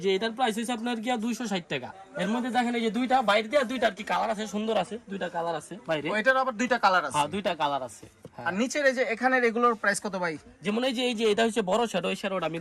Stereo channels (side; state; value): both; identical; correlation 1.00